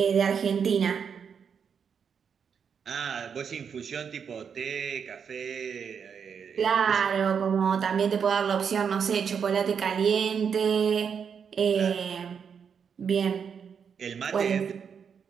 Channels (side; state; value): left; quieter; 6.9 dB